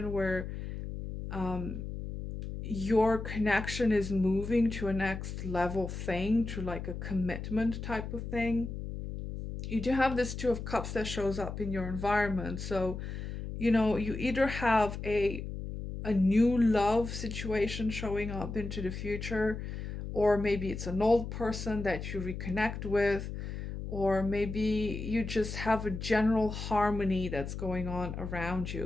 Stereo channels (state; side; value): noise; left; hum, 7 dB below the sound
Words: where um, your connection is moving to a next level thing, to like a commitment type of thing. You do have this Two of Cups that shows up in your environment. So, you either have a new love situation showing up into the future, or maybe it's an old person that you reconnect with, or maybe you just have a general harmony that's going on around